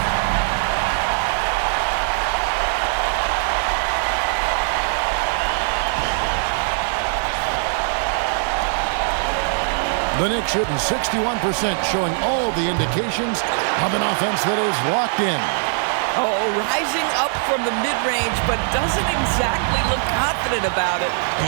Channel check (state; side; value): silent; left; 65 dB below the other